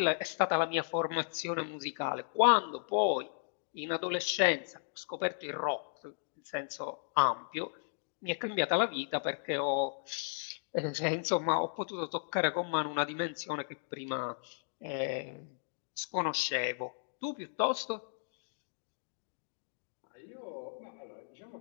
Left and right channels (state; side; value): silent; right; digital silence